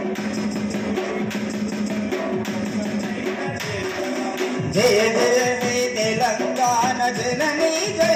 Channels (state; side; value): identical; both; correlation 1.00